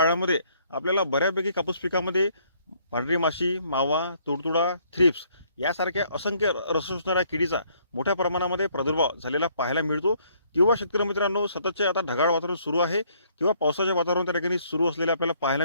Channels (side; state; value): both; inverted; correlation -0.65